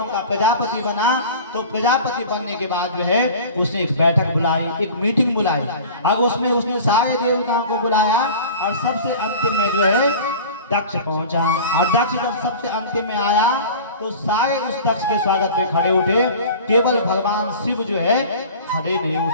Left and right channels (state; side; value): inverted; both; correlation -0.39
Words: का प्रजापति बना, तो प्रजापति बनने के बाद जो है उसने एक बैठक बुलाई, एक मीटिंग बुलाई, और उसमें उसने सारे देवताओं को बुलाया, और सबसे अंतिम में जो है दक्ष पहुंचा। और दक्ष जब सबसे अंतिम में आया तो सारे उस दक्ष के स्वागत में खड़े उठे, केवल भगवान शिव जो है खड़े नहीं